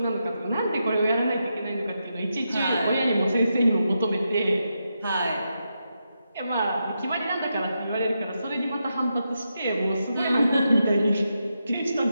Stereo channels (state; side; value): inverted; both; correlation -0.85